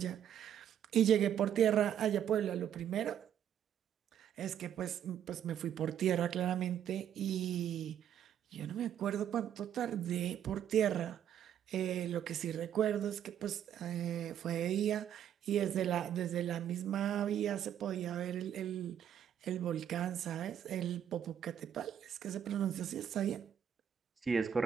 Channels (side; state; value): left; quieter; 9.7 dB